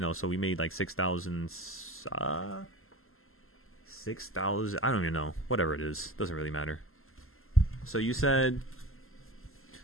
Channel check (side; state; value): right; late; 0.62 ms